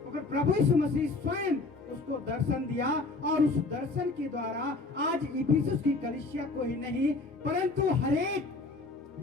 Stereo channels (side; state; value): right; quieter; 3.4 dB